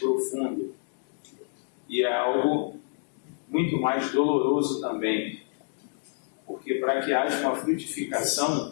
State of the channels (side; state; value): right; silent; 59 dB below the other